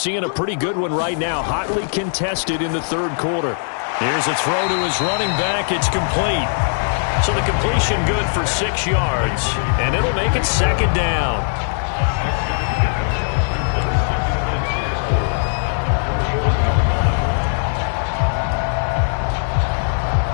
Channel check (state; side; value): silent; right; digital silence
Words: a pretty good one right now, hotly contested in the third quarter. Here's a throw to his running back. It's complete. So the completion good for 6 yards, and it'll make it second down.